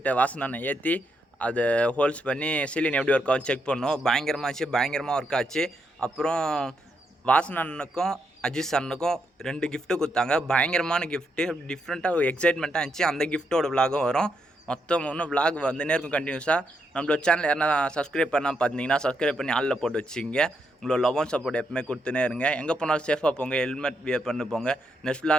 வாசன் ஏற்றி அதை ஹோல்ஸ் பண்ணி சீலின் எப்படி ஒர்க் ஆகும் செக் பண்ணோம். பயங்கரமாக ஒர்க் ஆச்சு. அப்புறம் வாசன் அண்ணனுக்கும் அஜித் அண்ணனுக்கும் 2 கிஃப்ட்டு கொடுத்தாங்க. பயங்கரமான கிஃப்ட்டு, டிஃப்ரெண்ட்டாக எக்ஸைட்மெண்ட்டாக இருந்துச்சு. அந்த கிஃப்ட்டோட விலாகும் வரும். மொத்தம் இன்னும் விலாக் நேருக்கும் கண்டினியூஸாக. நம்மளோட சேனல் யாரா சப்ஸ்கிரைப் பண்ணால் பார்த்தீங்கன்னா சப்ஸ்கிரைப் பண்ணி ஆளில் போட்டு வச்சுங்க. உங்களோட லவ் அண்ட் சப்போர்ட் எப்பவுமே கொடுத்துனே இருங்க. எங்கே போனாலும் சேஃபாக போங்க, ஹெல்மெட் வியர் பண்ணி போங்க. நெக்ஸ்ட்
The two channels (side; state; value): both; normal; correlation 0.80